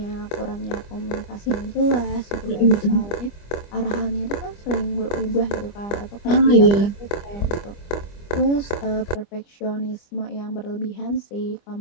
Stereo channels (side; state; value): right; late; 25 ms